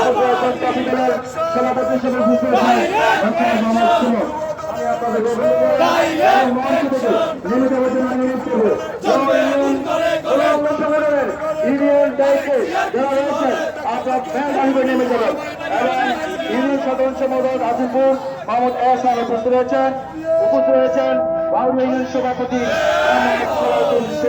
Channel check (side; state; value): both; identical; correlation 1.00